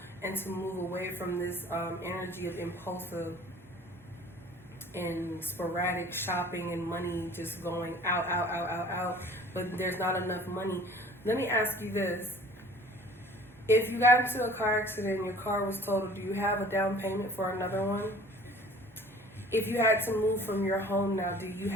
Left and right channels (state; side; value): normal; both; correlation 0.48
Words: and to move away from this energy of impulsive and sporadic shopping and money just going out, but there's not enough money. Let me ask you this. If you got into a car accident and your car was totaled, do you have a down payment for another one? If you had to move from your home now, do you